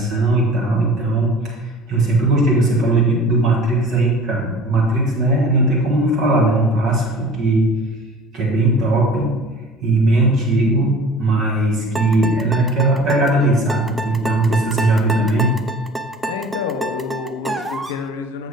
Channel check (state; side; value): normal; both; correlation 0.45